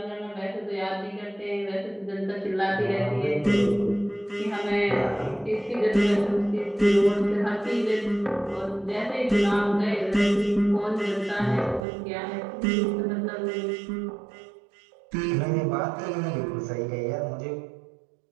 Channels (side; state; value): left; drops out; at 11.9 s